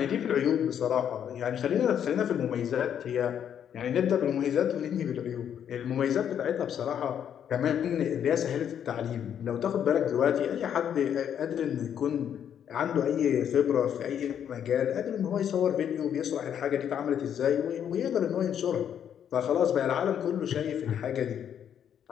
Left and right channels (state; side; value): quieter; right; 9.0 dB